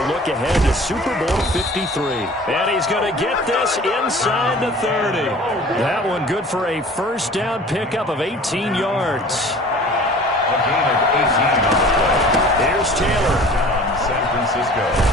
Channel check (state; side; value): normal; both; correlation 0.45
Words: look ahead to Super Bowl 53. And he's going to get this inside the 30. That one good for a 1st down pickup of 18 yards. A gain of 18 on the play. Here's Taylor. San Francisco.